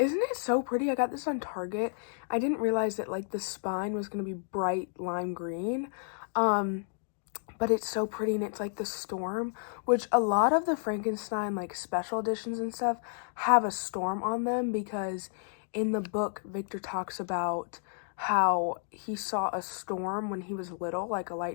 it so pretty? I got this on Target. I didn't realize that like the spine was going to be bright lime green. But it's so pretty, and it's like the storm, which a lot of the Frankenstein like special editions and stuff have a storm on them, because in the book Victor talks about how he saw a storm when he was little, like a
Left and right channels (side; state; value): right; silent; digital silence